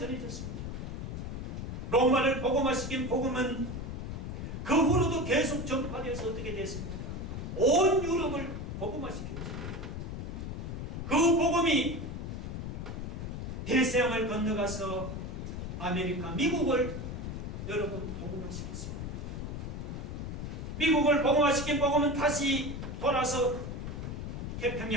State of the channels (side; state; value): left; noise; rumble, 5 dB below the sound